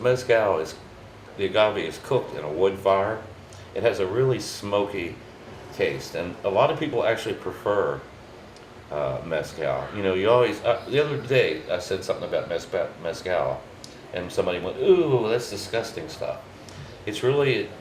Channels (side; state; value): both; identical; correlation 1.00